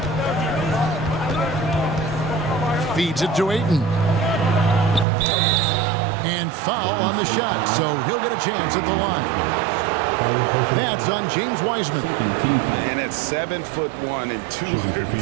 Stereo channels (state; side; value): drops out; left; at 5.1 s